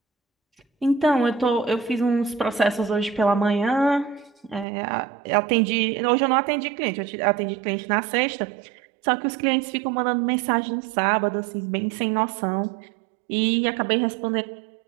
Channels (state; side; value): drops out; left; at 4.7 s